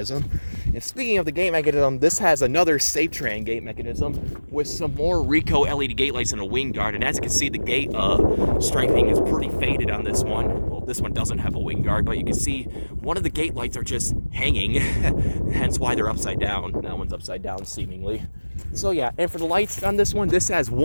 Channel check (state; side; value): inverted; both; correlation -1.00